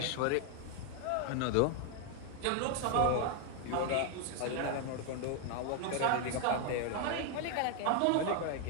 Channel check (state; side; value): different; both; correlation 0.00